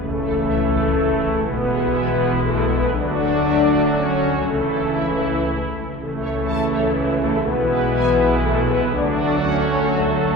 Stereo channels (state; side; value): normal; both; correlation 0.45